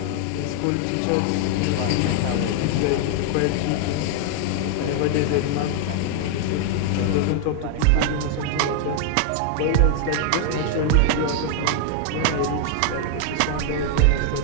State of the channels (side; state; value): both; different; correlation 0.00